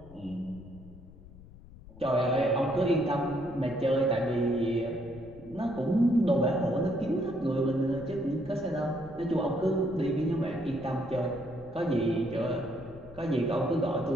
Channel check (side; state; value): left; noise; rumble, 19 dB below the sound